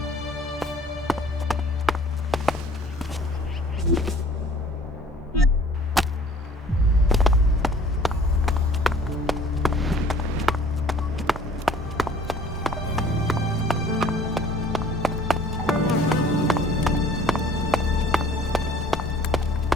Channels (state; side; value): normal; both; correlation 0.52